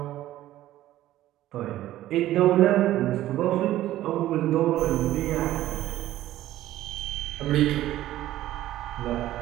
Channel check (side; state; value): left; quieter; 14.2 dB